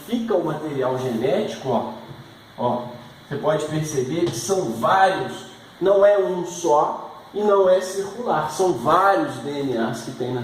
o material genético, ó, você pode perceber que são vários, não é um só e não é circular, são vários DNAs que tem na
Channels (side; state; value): both; identical; correlation 1.00